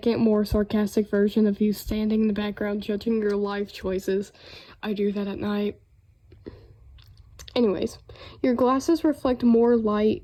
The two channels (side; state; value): both; identical; correlation 1.00